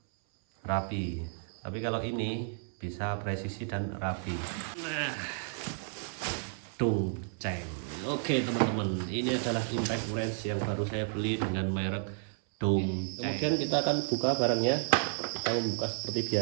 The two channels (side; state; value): left; silent; 56 dB below the other